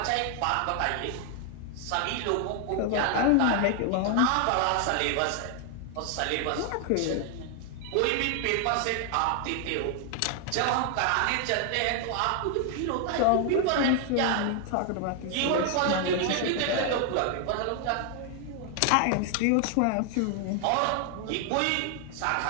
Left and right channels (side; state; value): both; different; correlation 0.00